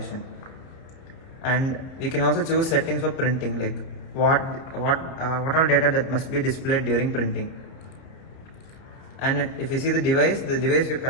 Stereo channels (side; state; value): right; late; 30 ms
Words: And we can also choose settings for printing, like what all data that must be displayed during printing. And if you see the device we are